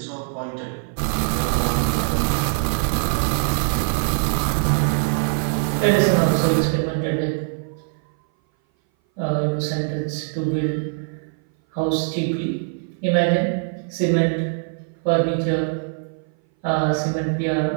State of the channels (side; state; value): left; silent; 59 dB below the other